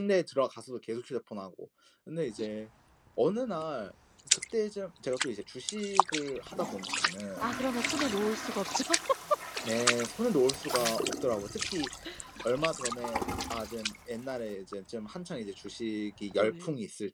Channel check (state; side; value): identical; both; correlation 1.00